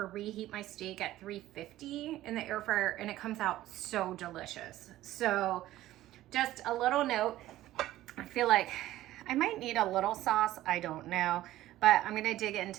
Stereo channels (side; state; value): left; quieter; 14.9 dB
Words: reheat my steak at 350 in the air fryer, and it comes out so delicious. So just a little note, I feel like I might need a little sauce. I don't know, but I'm gonna dig